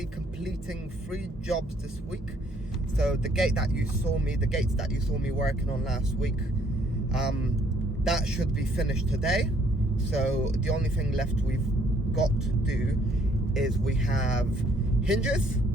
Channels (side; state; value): both; normal; correlation 0.64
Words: completing 3 jobs this week. So the gates that you saw me working on last week, that should be finished today. So the only thing left we've got to do is we have hinge